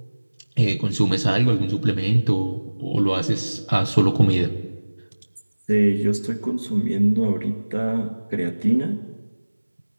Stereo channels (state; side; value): inverted; both; correlation -1.00